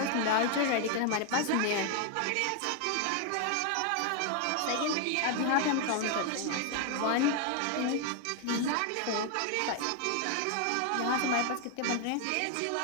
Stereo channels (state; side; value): different; both; correlation 0.00